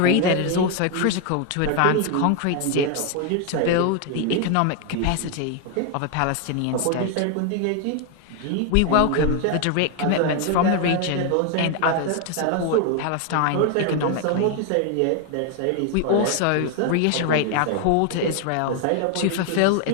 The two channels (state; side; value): different; both; correlation 0.01